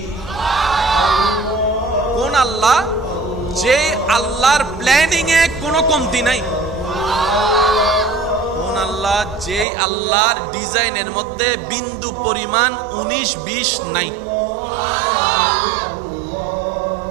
কোন আল্লাহ? যে আল্লাহর প্ল্যানিং এ কোনো কমতি নাই। কোন আল্লাহ? যে আল্লাহর ডিজাইনের মধ্যে বিন্দু পরিমাণ 19-20 নাই।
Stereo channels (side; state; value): left; drops out; at 9.7 s